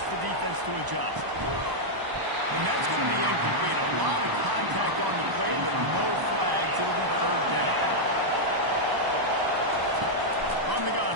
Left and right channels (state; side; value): late; left; 1.0 ms